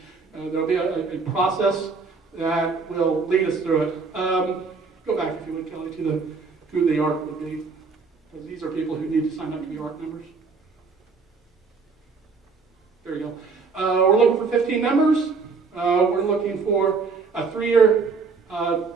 know, there'll be a process that will lead us through it. Go back, if you would, Kelly, to who the ARC would be. Because these are people who need to sign up to be ARC members. There you go. We're looking for 15 members. We're looking for a 3-year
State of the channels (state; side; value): quieter; left; 4.8 dB